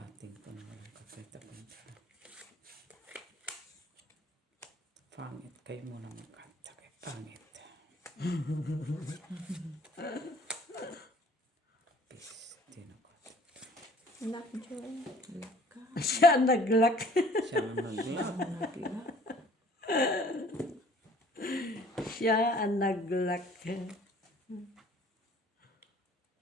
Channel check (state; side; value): normal; both; correlation 0.54